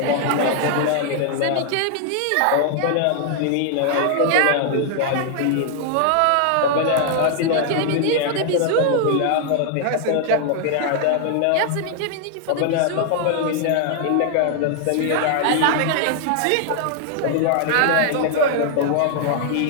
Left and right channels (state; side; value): different; both; correlation 0.00